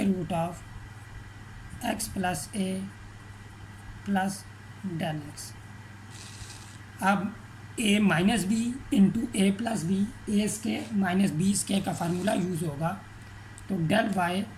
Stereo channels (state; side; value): identical; both; correlation 1.00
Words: root of x plus a plus del x. अब a minus b into a plus b, a square minus b square का formula use होगा। तो del y